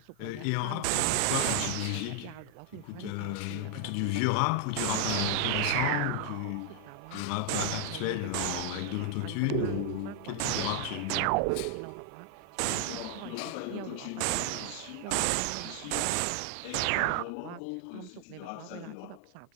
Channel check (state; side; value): different; both; correlation 0.00